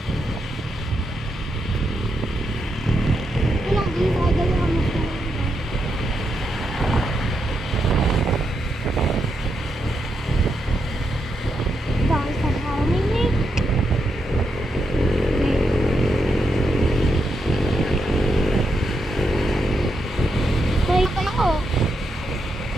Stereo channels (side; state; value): both; normal; correlation 0.82